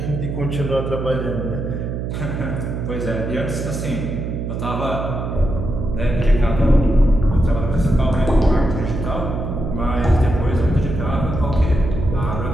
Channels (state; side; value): noise; right; hum, 4 dB below the sound